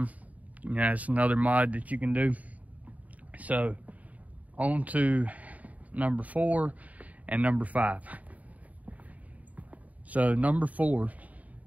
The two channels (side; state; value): left; late; 0.072 ms